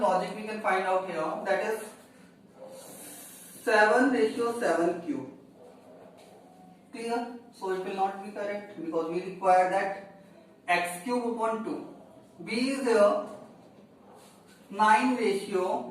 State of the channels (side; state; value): both; identical; correlation 1.00